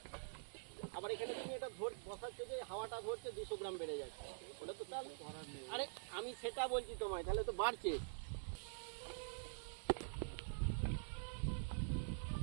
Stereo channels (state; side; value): silent; left; digital silence